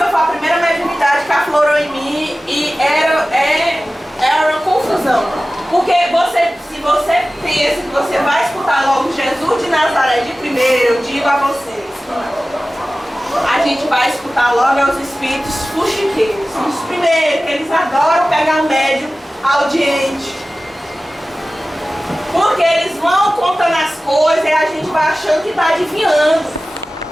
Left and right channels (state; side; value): normal; both; correlation 0.96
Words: foi a primeira mediunidade que aflorou em mim e era uma confusão. Porque se você pensa que você vai escutar logo Jesus de Nazaré de primeiro, eu digo a vocês, a gente vai escutar logo os espíritos fuxiqueiros. São os primeiros, eles adoram pegar médium audiente. Porque eles vão contando as coisas e a gente vai achando que está adivinhando.